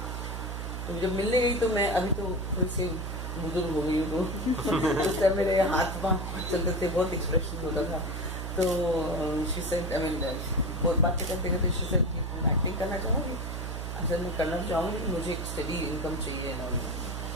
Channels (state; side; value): noise; right; hum, 5 dB below the sound